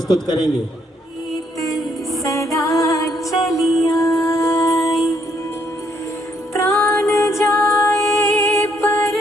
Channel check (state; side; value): normal; both; correlation 0.71